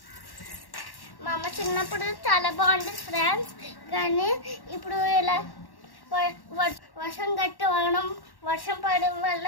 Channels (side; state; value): right; late; 1.1 ms